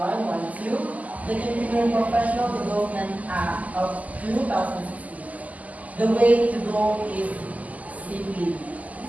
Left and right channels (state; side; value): late; left; 0.075 ms